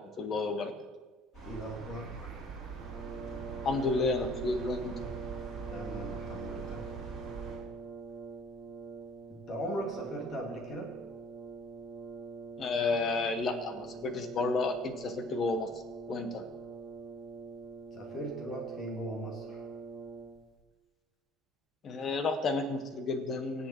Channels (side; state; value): both; normal; correlation 0.53